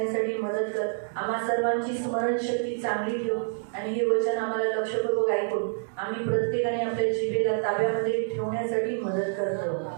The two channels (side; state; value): left; silent; digital silence